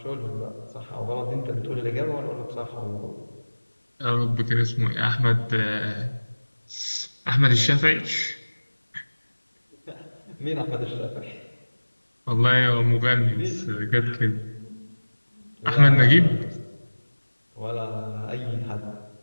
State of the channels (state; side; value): inverted; both; correlation -1.00